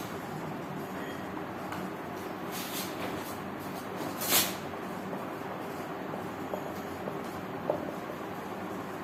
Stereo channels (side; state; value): both; identical; correlation 1.00